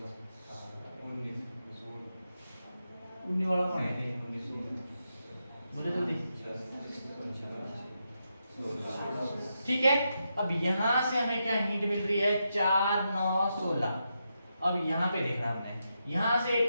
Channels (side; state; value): both; inverted; correlation -0.85